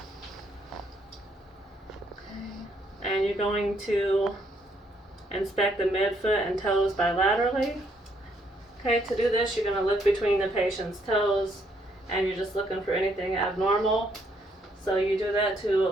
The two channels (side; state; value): both; normal; correlation 0.71